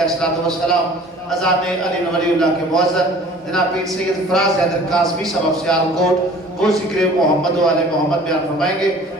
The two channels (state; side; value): normal; both; correlation 0.48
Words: वस्सलाम अज़ान अली वलीउल्लाह के मुअज़्ज़न जनाब पीर सैयद फराज हैदर कासमी साहब सियालकोट वो ज़िक्र मोहम्मद व आले मोहम्मद बयान फरमाएंगे।